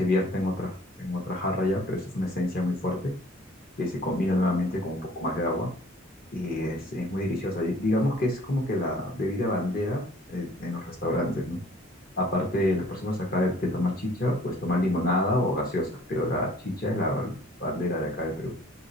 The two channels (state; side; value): normal; both; correlation 0.54